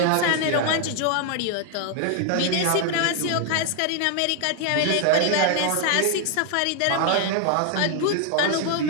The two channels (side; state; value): both; different; correlation 0.00